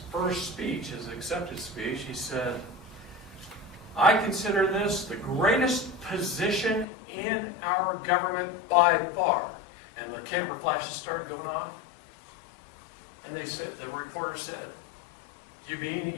first speech, his acceptance speech, he said, "I consider this the greatest position in our government by far." And the camera flashes started going off. And they said, the reporter said, "You mean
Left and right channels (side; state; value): right; drops out; at 6.9 s